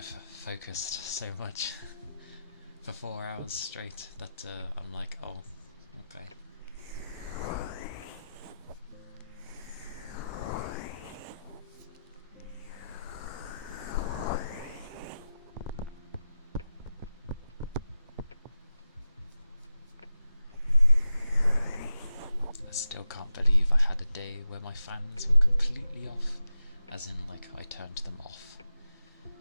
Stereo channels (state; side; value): inverted; both; correlation -0.91